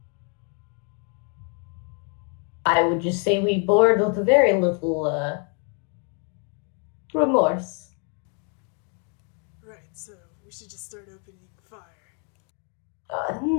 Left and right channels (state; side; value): quieter; right; 39.6 dB